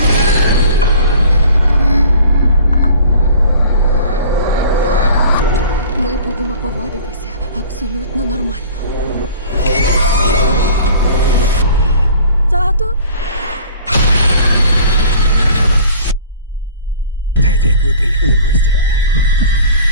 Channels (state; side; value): inverted; both; correlation -0.46